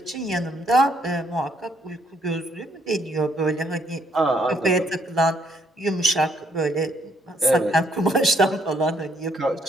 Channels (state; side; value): normal; both; correlation 0.70